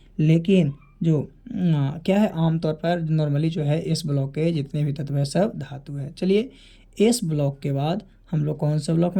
लेकिन जो क्या है, आमतौर पर नॉर्मली जो है एस ब्लॉक के जितने भी तत्व है सब धातु है। चलिए, एस ब्लॉक के बाद हम लोग कौन से ब्लॉक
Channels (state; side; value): identical; both; correlation 1.00